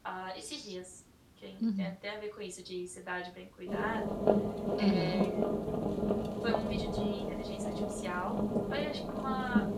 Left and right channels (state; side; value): identical; both; correlation 1.00